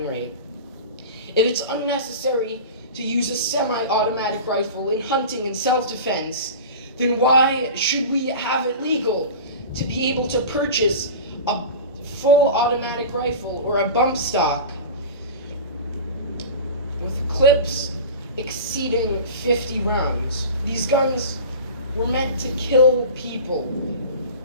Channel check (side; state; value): both; inverted; correlation -0.33